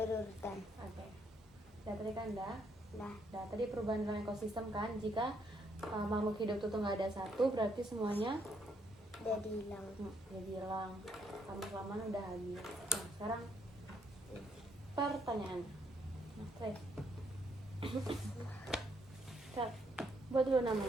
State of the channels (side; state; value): both; normal; correlation 0.73